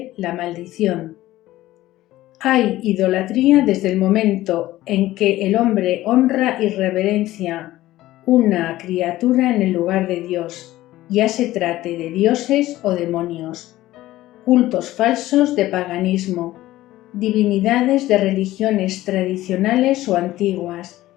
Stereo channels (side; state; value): right; quieter; 15.9 dB